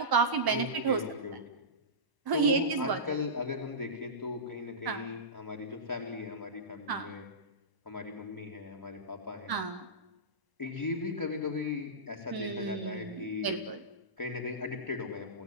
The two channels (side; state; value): left; late; 1.0 ms